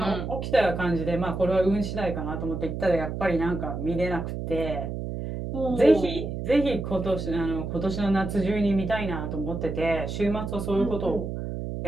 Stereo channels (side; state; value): right; noise; hum, 5 dB below the sound